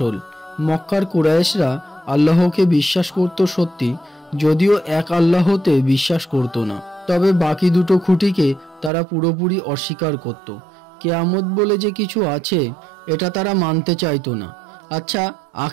মক্কার কুরাইশরা আল্লাহকে বিশ্বাস করত সত্যি, যদিও এক আল্লাহতে বিশ্বাস করত না। তবে বাকি দুটো খুঁটিকে তারা পুরোপুরি অস্বীকার করত। কেয়ামত বলে যে কিছু আছে, এটা তারা মানতে চাইতো না। আচ্ছা,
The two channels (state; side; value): drops out; left; at 8.9 s